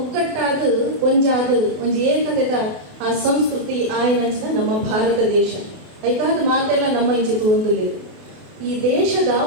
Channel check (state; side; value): late; left; 28 ms